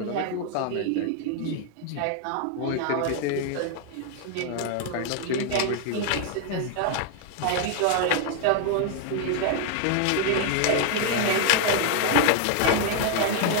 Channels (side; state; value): both; different; correlation 0.00